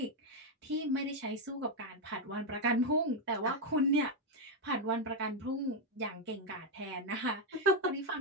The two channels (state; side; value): normal; both; correlation 0.03